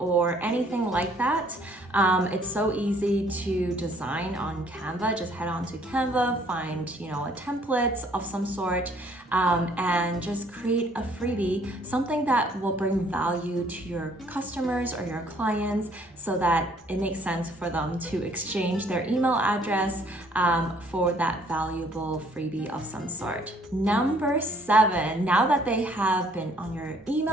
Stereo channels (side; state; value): both; normal; correlation 0.62